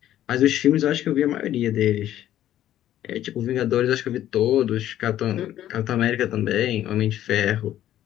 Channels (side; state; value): right; quieter; 12.4 dB